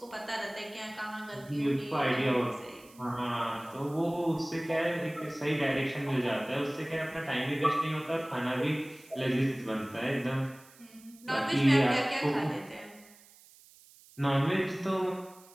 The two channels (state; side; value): noise; right; hiss, 24 dB below the sound